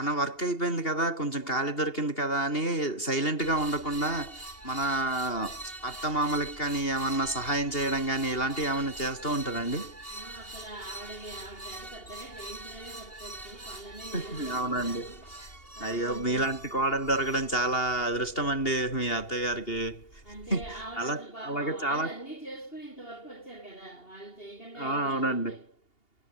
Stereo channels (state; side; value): late; right; 2.8 ms